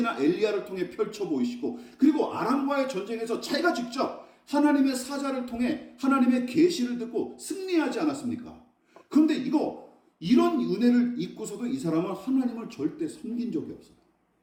엘리야를 통해 펼쳐 보이시고, 그리고 아람과의 전쟁에서 자기가 직접 하나님의 사자를 통해 하나님의 계시를 듣고 승리하지 않았습니까? 그런데 이런 은혜를 잊고서도 이 사람은 하나님을 절대 섬긴 적이 없어요.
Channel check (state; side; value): identical; both; correlation 1.00